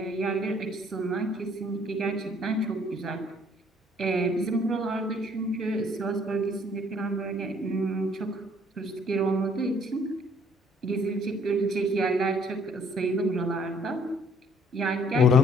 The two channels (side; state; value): both; normal; correlation 0.61